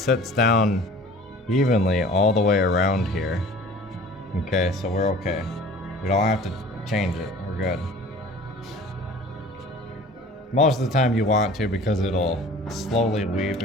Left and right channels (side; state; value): both; normal; correlation 0.45